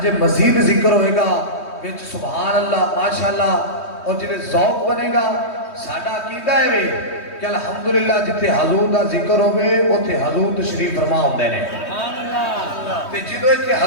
مزید ذکر ہوئے گا وچ سبحان اللہ ماشاءاللہ، اور جنہیں ذوق بنے گا ساڈا عقیدہ ہے وے کہ الحمدللہ جتے حضور دا ذکر ہوئے اوتھے حضور تشریف فرما ہوندے نے۔ تے جدو ایتھے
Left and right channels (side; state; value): right; late; 3.2 ms